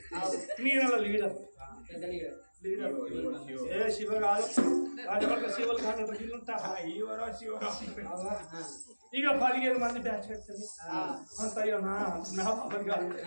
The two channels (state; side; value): inverted; both; correlation -1.00